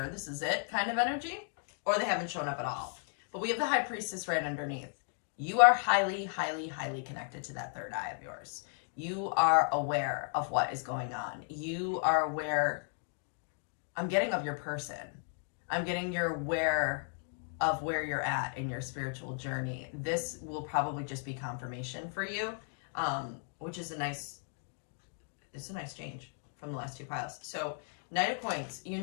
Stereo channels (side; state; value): right; silent; 54 dB below the other